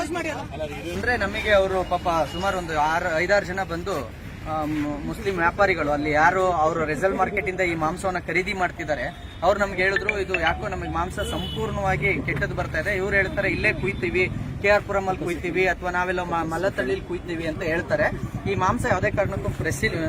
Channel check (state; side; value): identical; both; correlation 1.00